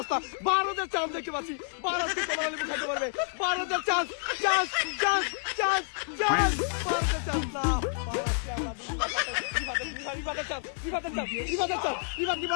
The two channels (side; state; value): right; silent; 58 dB below the other